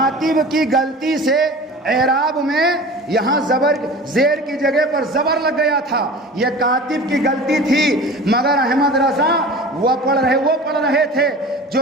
کی غلطی سے اعراب میں یہاں زیر کی جگہ پر زبر لگ گیا تھا، یہ کاتب کی غلطی تھی، مگر احمد رضا وہ پڑھ رہے تھے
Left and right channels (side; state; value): both; normal; correlation 0.38